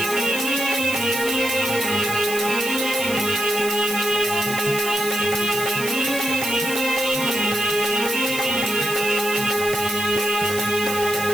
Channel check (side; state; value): right; noise; hiss, 8 dB below the sound